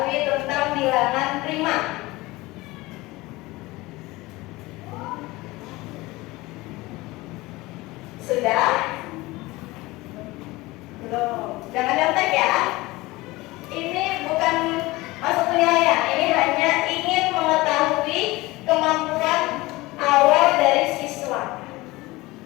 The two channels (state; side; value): quieter; right; 20.8 dB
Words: tentang bilangan prima? Sudah? Belum. Jangan nyontek ya. Ini bukan masuk penilaian. Ini hanya ingin mengetahui kemampuan awal dari siswa.